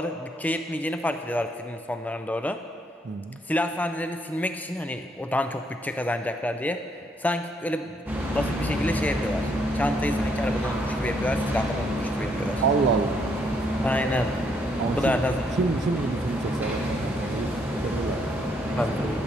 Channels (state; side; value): normal; both; correlation 0.72